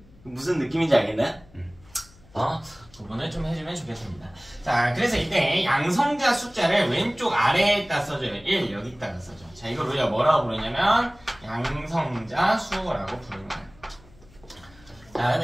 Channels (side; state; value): left; noise; hum, 26 dB below the sound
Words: 무슨 느낌인지 알겠나요? 구분을 좀 해주면 좋겠습니다. 자, 그래서 이때 양성자 숫자를 왼쪽 아래에다 써줘요. 1 여기다가 써줘. 자, 이걸 우리가 뭐라고 부르냐면 양성자 수라고 부르는 거예요. 자,